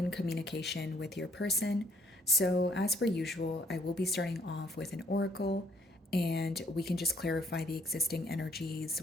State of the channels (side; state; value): both; normal; correlation 0.65